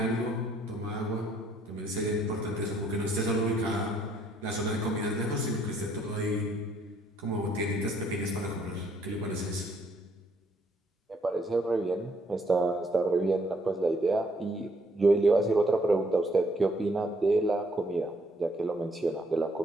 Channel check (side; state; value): both; normal; correlation 0.67